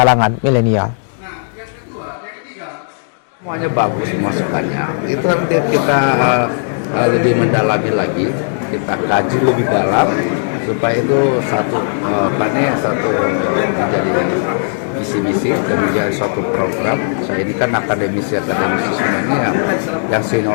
milenial. Semuanya bagus masukannya. Itu nanti kita lebih mendalami lagi, kita kaji lebih dalam supaya itu satu menjadi visi misi dan menjadi suatu program. Saya ini kan akademisi semua ini yang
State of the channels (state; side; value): silent; right; digital silence